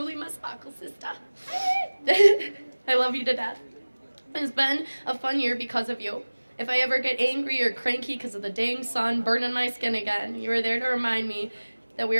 my sparkle sister. I love you to death. It's been a fun year because of you. If I ever get angry or cranky because of the dang sun burning my skin again, you are there to remind me that we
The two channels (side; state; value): both; inverted; correlation -1.00